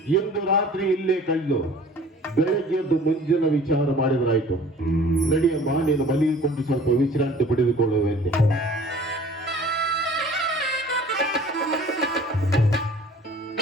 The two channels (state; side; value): normal; both; correlation 0.48